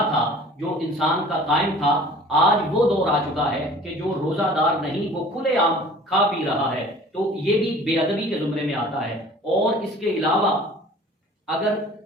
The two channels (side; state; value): both; normal; correlation 0.47